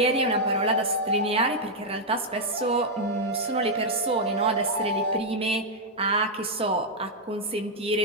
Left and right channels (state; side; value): normal; both; correlation -0.03